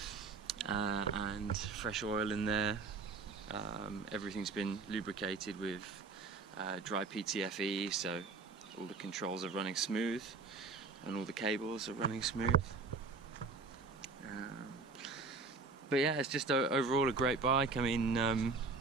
and fresh oil in there. Everything's been lubricated with dry PTFE, so all the controls are running smooth and all the cables are running smooth. But yeah, it's just overall a great bike. I mean,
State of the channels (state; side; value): quieter; left; 4.2 dB